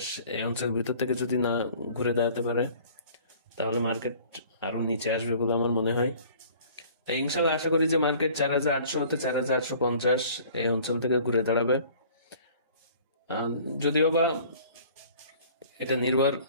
এই অঞ্চলের ভিতর থেকে যদি না ঘুরে দাঁড়াতে পারে, তাহলে মার্কেট আরো নিচে আসবে বলে আমার মনে হয়। তাই ইনশাল্লাহ আশা করি যে মার্কেট 4,800 হতে 4,850 এই অঞ্চল থেকে ঘুরে দাঁড়াবে। যদিও বা এটা নির্ভর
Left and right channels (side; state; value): both; inverted; correlation -0.50